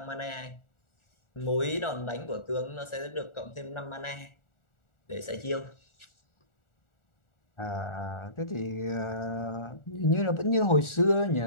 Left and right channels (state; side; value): late; right; 1.4 ms